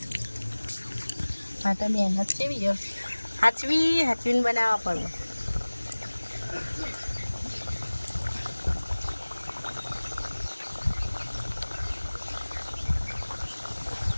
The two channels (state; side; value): inverted; both; correlation -1.00